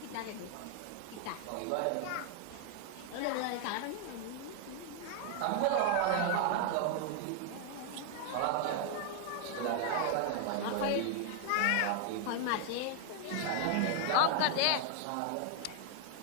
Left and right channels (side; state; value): both; different; correlation 0.00